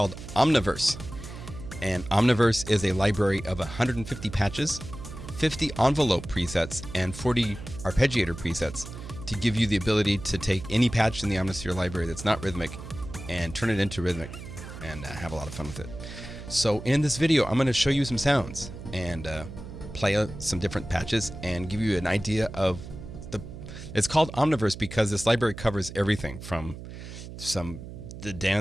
Omniverse. And Omniverse is a library of 150 patches, 50 envelope presets, and 40 arpeggiator presets to give you the ability to take any patch in the Omnisphere library that's not rhythmic and turn it into rhythmic and have a lot of fun with it. So in this video, I'm going to show you some sounds and play some different patches and give you an idea of it's called Omniverse because this library covers everything from the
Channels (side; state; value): right; noise; hum, 12 dB below the sound